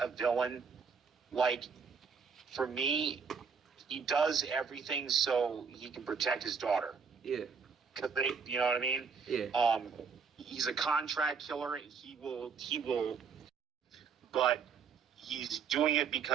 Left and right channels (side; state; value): left; quieter; 6.0 dB